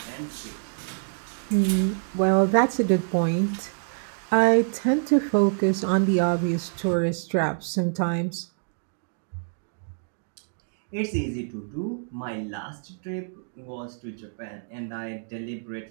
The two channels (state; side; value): silent; left; digital silence